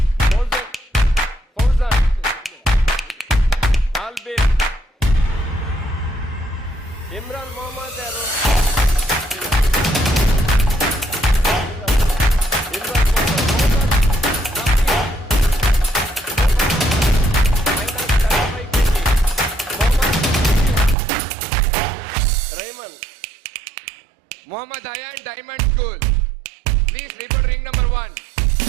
ಫೌಜಾನ್ ಆಲ್ಬೇರ್, ಇಮ್ರಾನ್ ಮೊಹಮ್ಮದ್ ಯಾರು, Imran Mohammad Ayan Diamond School. Please report ring number 1.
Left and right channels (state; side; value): drops out; left; at 21.0 s